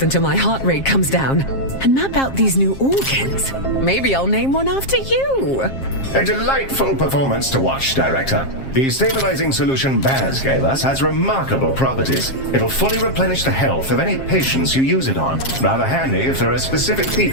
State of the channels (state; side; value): late; right; 7.5 ms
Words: until my heart rate comes down and map out these new organs. Maybe I'll name one after you. A delightful performance to watch, Director. The stabilizing solution Baz gave us has remarkable properties. It'll fully replenish the health of any patients you use it on. Rather handy if there are specific